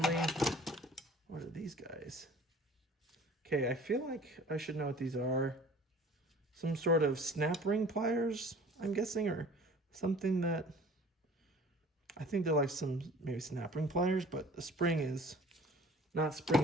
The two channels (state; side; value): normal; both; correlation 0.48